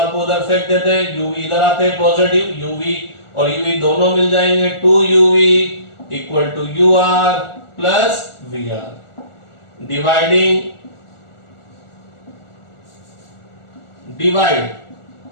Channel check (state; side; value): late; right; 1.4 ms